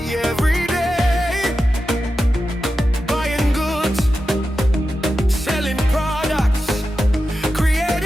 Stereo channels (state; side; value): normal; both; correlation 0.91